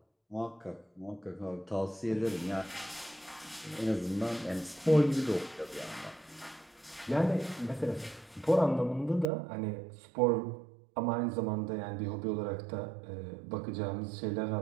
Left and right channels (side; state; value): left; drops out; at 9.2 s